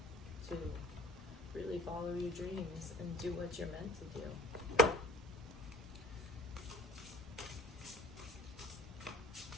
to really follow your dreams and do what you're meant to do.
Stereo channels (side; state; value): both; normal; correlation 0.50